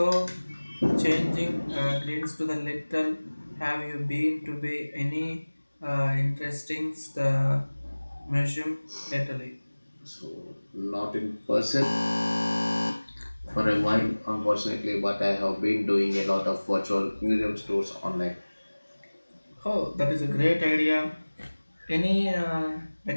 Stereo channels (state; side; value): inverted; both; correlation -1.00